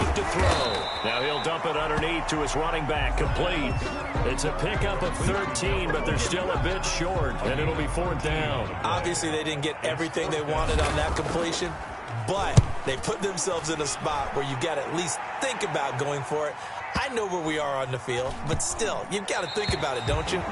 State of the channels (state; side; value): identical; both; correlation 1.00